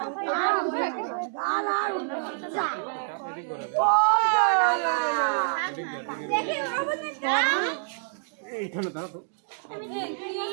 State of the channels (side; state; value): left; silent; digital silence